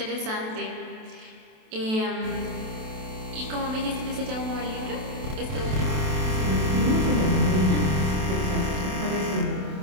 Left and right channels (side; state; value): left; late; 27 ms